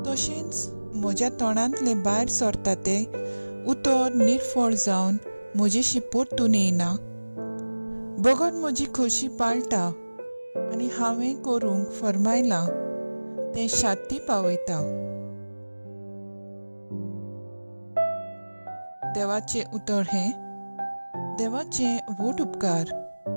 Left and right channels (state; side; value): inverted; both; correlation -1.00